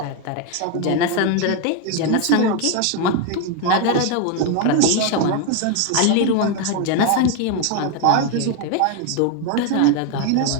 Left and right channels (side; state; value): both; different; correlation 0.01